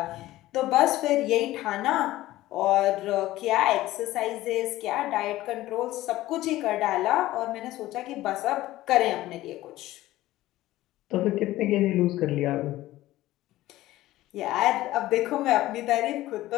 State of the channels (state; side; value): quieter; right; 16.1 dB